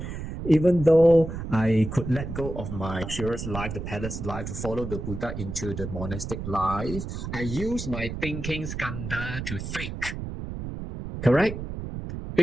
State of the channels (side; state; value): right; noise; rumble, 7 dB below the sound